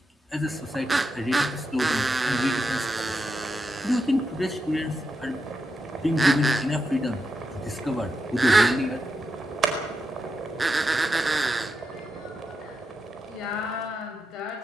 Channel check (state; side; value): normal; both; correlation 0.86